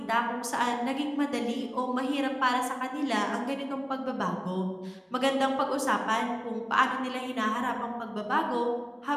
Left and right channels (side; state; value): both; identical; correlation 1.00